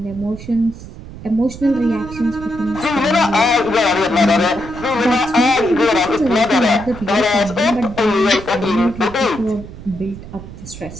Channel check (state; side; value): noise; right; rumble, 14 dB below the sound